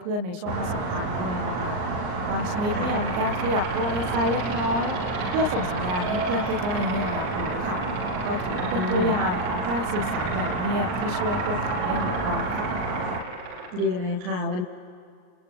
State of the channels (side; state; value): left; late; 39 ms